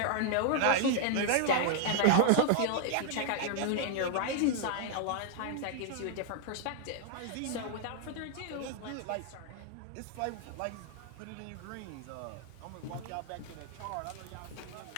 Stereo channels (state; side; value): different; both; correlation 0.00